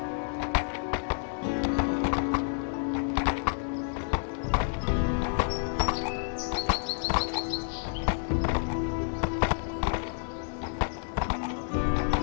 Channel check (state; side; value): silent; right; digital silence